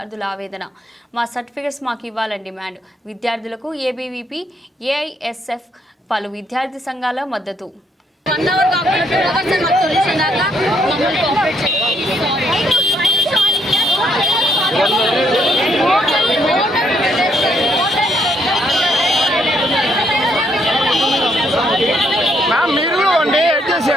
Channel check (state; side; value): normal; both; correlation 0.72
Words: ఆవేదన. మా సర్టిఫికేట్స్ మాకు ఇవ్వాలని డిమాండ్. విద్యార్థులకు ABVP, AISF పలు విద్యార్థి సంఘాల మద్దతు. మీరు 1 డే